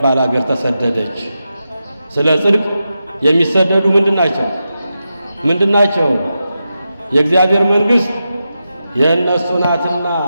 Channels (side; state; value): both; inverted; correlation -0.89